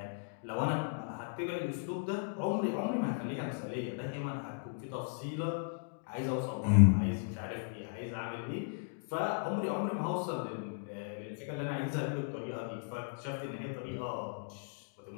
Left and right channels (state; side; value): silent; right; digital silence